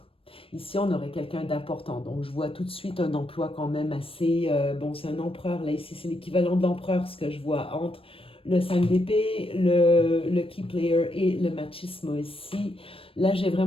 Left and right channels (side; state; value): right; late; 0.27 ms